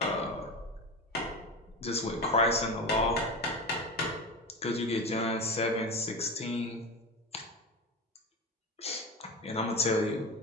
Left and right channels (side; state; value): both; normal; correlation 0.24